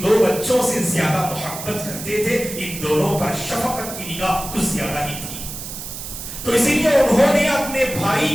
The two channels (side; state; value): right; noise; hiss, 9 dB below the sound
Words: 2 بچوں سے زیادہ محبت کرتے تھے. ان دونوں پر شفقت کی نگاہ کچھ زیادہ ہی تھی. تو اسی لیے انہوں نے اپنے